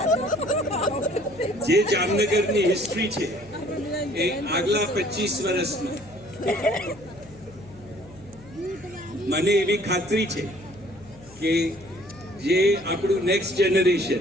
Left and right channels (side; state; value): left; noise; hum, 22 dB below the sound